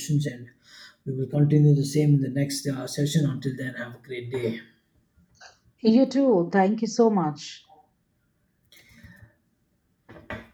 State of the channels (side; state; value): both; identical; correlation 1.00